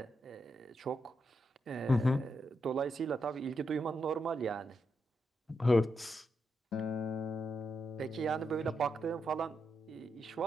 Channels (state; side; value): normal; both; correlation 0.83